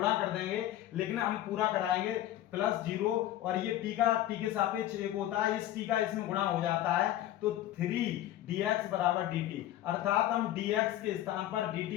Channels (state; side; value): quieter; right; 13.4 dB